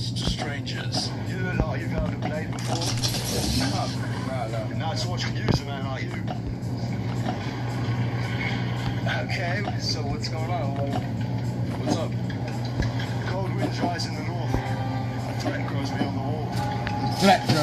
to strangers. You look like you've held a blade before. No, it's watching you, a man like you. Okay, so what's going on? What's up? Cold winds rise in the north. A threat grows beyond the wall. Threat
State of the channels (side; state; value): both; identical; correlation 1.00